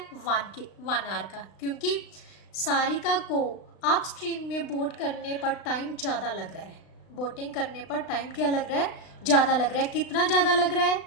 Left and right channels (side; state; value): right; late; 36 ms